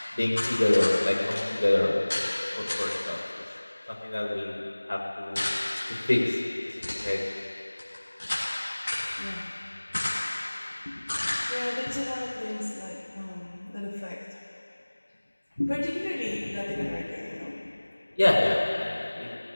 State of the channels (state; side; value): inverted; both; correlation -1.00